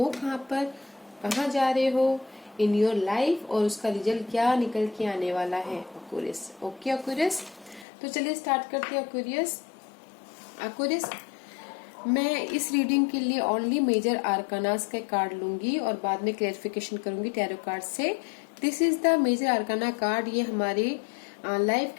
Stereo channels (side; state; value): right; drops out; at 7.9 s